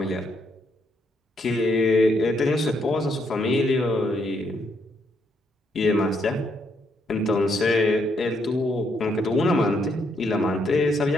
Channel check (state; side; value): normal; both; correlation 0.75